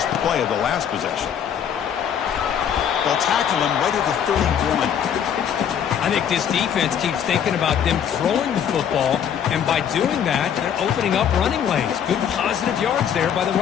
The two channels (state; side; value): quieter; right; 8.6 dB